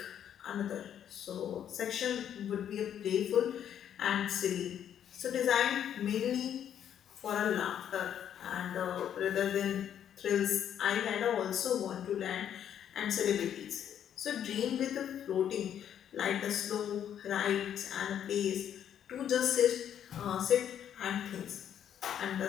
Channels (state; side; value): quieter; right; 9.6 dB